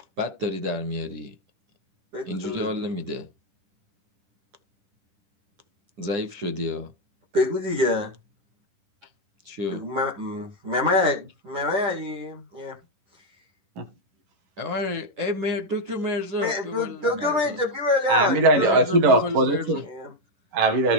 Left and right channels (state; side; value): late; left; 10 ms